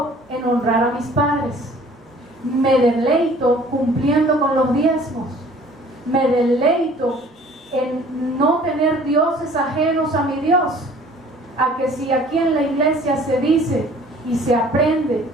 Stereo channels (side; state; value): both; normal; correlation 0.52